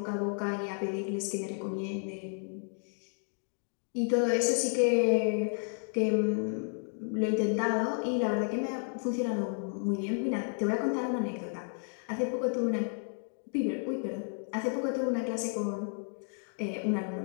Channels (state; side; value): silent; right; 55 dB below the other